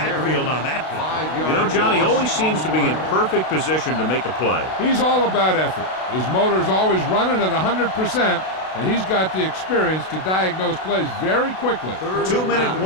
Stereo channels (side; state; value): right; late; 32 ms